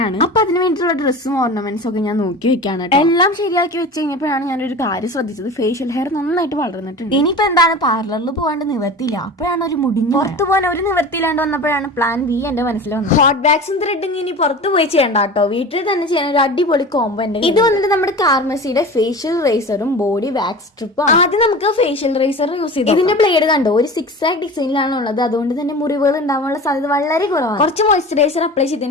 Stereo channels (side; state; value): both; normal; correlation 0.34